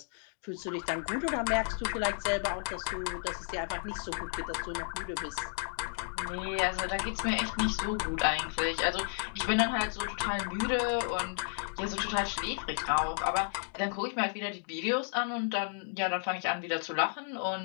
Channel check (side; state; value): right; silent; digital silence